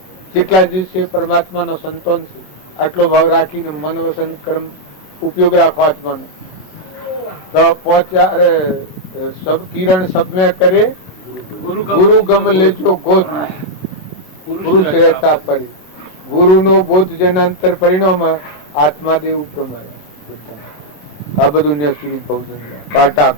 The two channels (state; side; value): late; right; 27 ms